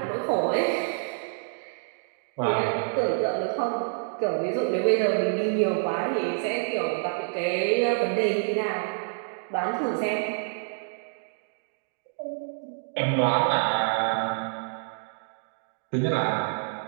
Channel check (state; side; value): silent; left; digital silence